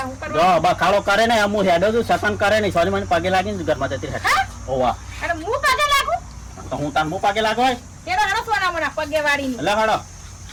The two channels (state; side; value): identical; both; correlation 1.00